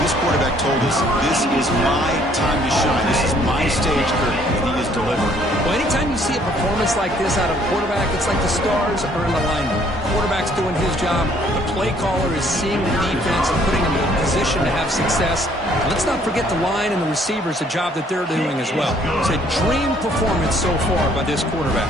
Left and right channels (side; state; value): both; normal; correlation 0.62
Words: This quarterback told us, this is my time to shine. This is my stage, Kirk, and he is delivering. Well, performance like this out of quarterback, it's like the stars are in alignment. Quarterback's doing his job. The play caller is seeing the defense and putting them in a position to have success. And let's not forget the line and the receivers, the job that they're doing as well. It's a dream performance so far by this quarterback.